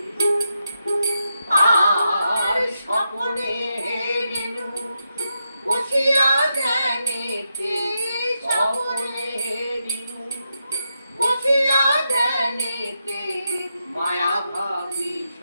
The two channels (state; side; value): inverted; both; correlation -0.85